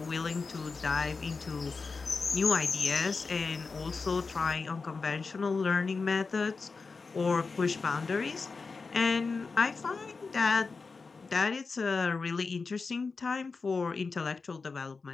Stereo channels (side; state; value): right; quieter; 4.4 dB